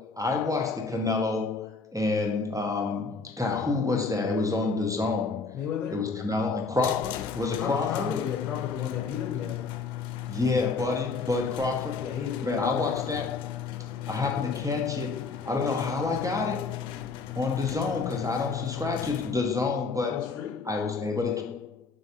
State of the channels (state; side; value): quieter; right; 4.4 dB